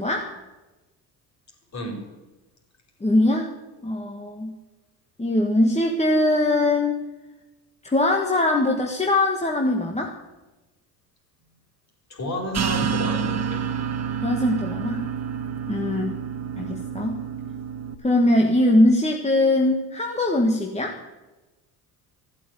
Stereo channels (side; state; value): both; normal; correlation 0.50